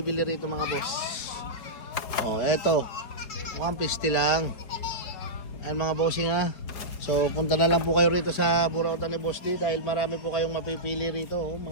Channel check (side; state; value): right; late; 4.7 ms